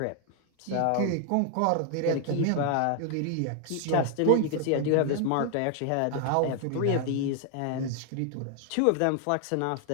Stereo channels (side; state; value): both; different; correlation 0.00